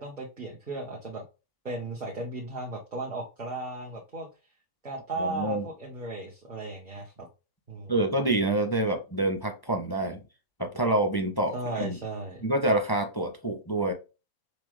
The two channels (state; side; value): late; right; 1.0 ms